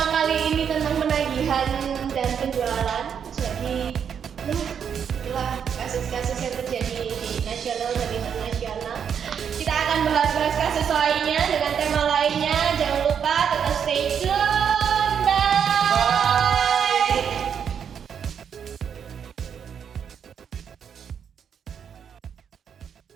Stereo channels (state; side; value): quieter; left; 7.7 dB